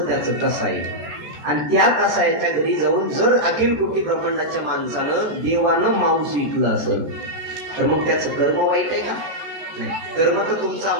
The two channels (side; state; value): left; late; 14 ms